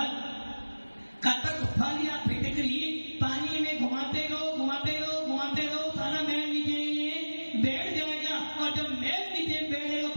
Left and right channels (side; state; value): both; inverted; correlation -1.00